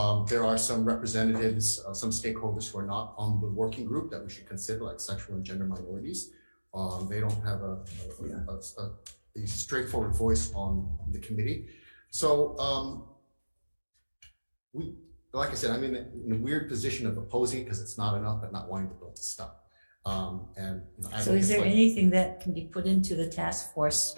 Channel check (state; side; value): inverted; both; correlation -1.00